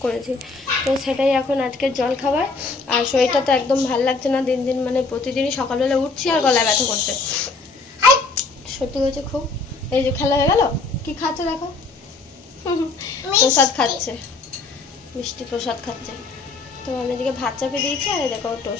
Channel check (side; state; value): right; quieter; 4.0 dB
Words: করেছি। তো সেটাই এখন আজকের জল খাবার। আর শরীরটা তো একদম ভালো লাগছে না, দিন দিন মানে প্রতিদিনই সকালবেলা উঠছি আর গলায় ব্যথা করছে, সত্যি হয়েছে খুব। এই যে খেলা হয়ে গেল, কি খাচ্ছে দেখো, প্রসাদ খাচ্ছে, মিষ্টি প্রসাদ খাচ্ছে। তো আমি এদিকে ভাত চাপিয়ে দিয়েছি আর এই দেখো